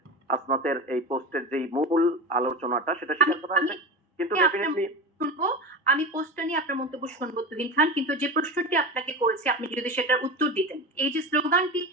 হাসনাতের এই পোস্টের যেই মূল আলোচনাটা সেটা স্বীকার করা হয়েছে, কিন্তু ডেফিনেটলি শুনবো, আমি পোস্টটা নিয়ে আপনার মন্তব্য শুনবো তুহিন খান, কিন্তু যে প্রশ্নটি আপনাকে করেছি আপনি যদি সেটার উত্তর দিতেন। এই যে স্লোগানটি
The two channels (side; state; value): both; normal; correlation 0.26